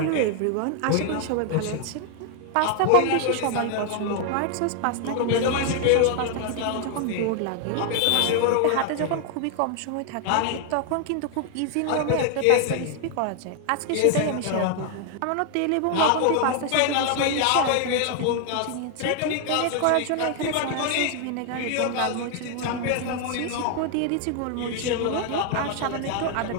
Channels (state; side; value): different; both; correlation 0.00